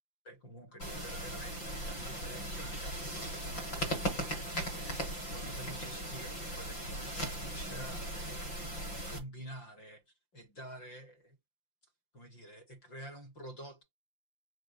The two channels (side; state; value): right; late; 5.8 ms